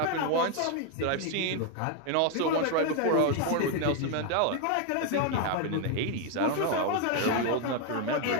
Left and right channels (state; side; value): different; both; correlation 0.01